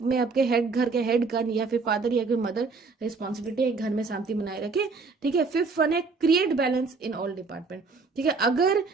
में आपके घर के हेड का या फिर फादर या फिर मदर रिस्पॉन्सिबिलिटी है घर में शांति बनाए रखे. ठीक है. फिफ्थ वन है create balance in all department. ठीक है, अगर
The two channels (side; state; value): left; quieter; 4.3 dB